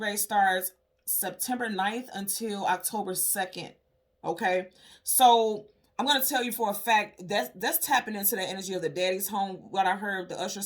starts September 9th until October 2nd. Okay, so I'm going to tell you for a fact that's tapping into the energy of the Daddy's Home. What I heard, the Usher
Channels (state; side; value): identical; both; correlation 1.00